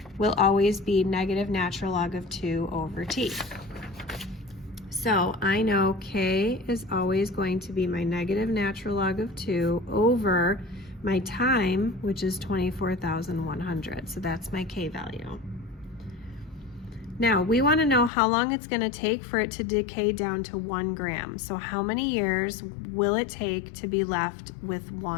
will always be negative natural log of 2 over T. So I know K is always going to be my negative natural log of 2 over my time, which is 24,100. So that's my K value. Now, we want to know how long it's going to take for it to decay down to 1 gram. So how many years will it take to be left with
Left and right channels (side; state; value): right; drops out; at 18.1 s